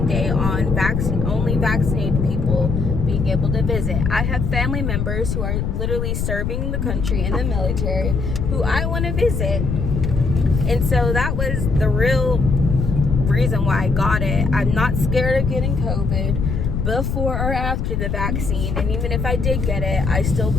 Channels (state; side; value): noise; left; rumble, 1 dB below the sound